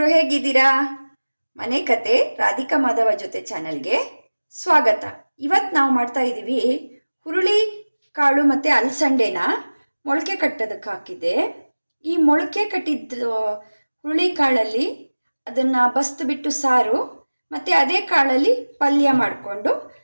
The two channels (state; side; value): inverted; both; correlation -1.00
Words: ಹೇಗಿದ್ದೀರಾ? ಮನೆ ಕತೆ ರಾಧಿಕಾ ಮಾಧವ ಜೊತೆ ಚಾನಲ್ಗೆ ಸ್ವಾಗತ. ಇವತ್ತು ನಾವು ಮಾಡ್ತಾ ಇದ್ದೀವಿ ಹುರುಳಿ ಕಾಳು ಮತ್ತು ಅಲಸಂಡೆನ ಮೊಳಕೆ ಕಟ್ಟೋದಕ್ಕೆ ಹಾಕಿದ್ದೆ. ಈ ಮೊಳಕೆ ಕಟ್ಟಿದ್ದ ಹುರುಳಿ ಕಾಳಲ್ಲಿ ಅದನ್ನು ಬಸ್ತು ಬಿಟ್ಟು ಸಾರು ಮತ್ತು ಅದೇ ಕಾಳಲ್ಲಿ ಪಲ್ಯ ಮಾಡಿಕೊಂಡು